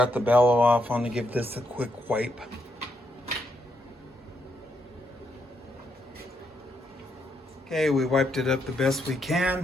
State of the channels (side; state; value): both; normal; correlation 0.78